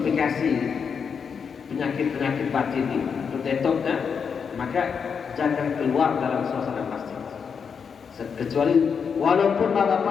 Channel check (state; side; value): quieter; right; 6.4 dB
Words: penyakit-penyakit batin ini, untuk detoknya, maka jangan keluar dalam suasana masjid. Kecuali walaupun